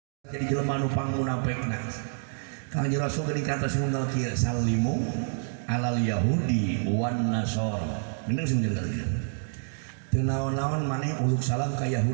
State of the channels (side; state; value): left; silent; digital silence